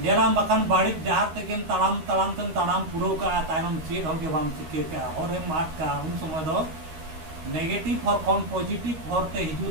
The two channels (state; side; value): late; left; 13 ms